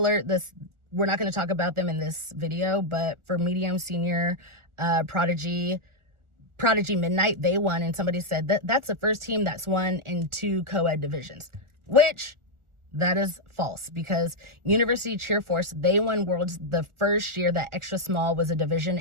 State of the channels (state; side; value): late; left; 1.4 ms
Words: we're not going to talk about them in this video, but for medium senior Prodigy Midnight, they won, and somebody said that's the first team that's won in 2 co-ed divisions, which that is false, because University Cheer Force, they won Worlds the first year that extra small was a